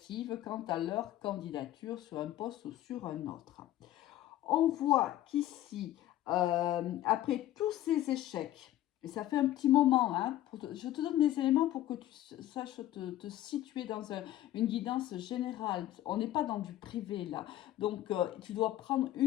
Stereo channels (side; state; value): right; quieter; 13.7 dB